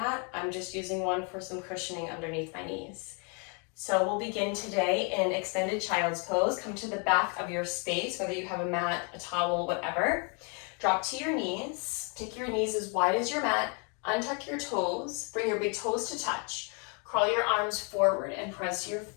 I'm just using one for some cushioning underneath my knees. So we'll begin today in extended child's pose. Come to the back of your space, whether you have a mat, a towel, whatever. Drop to your knees. Take your knees as wide as your mat. Untuck your toes. Bring your big toes to touch. Crawl your arms forward and press your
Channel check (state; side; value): quieter; right; 36.2 dB